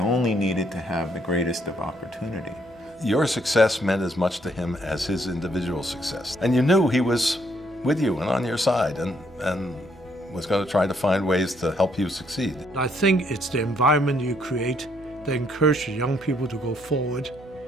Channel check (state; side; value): normal; both; correlation 0.70